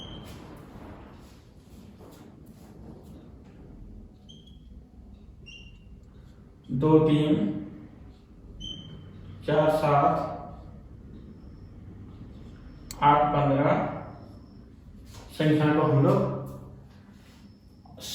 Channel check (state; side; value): identical; both; correlation 1.00